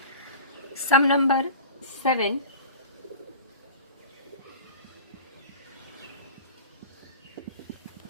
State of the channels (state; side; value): inverted; both; correlation -0.37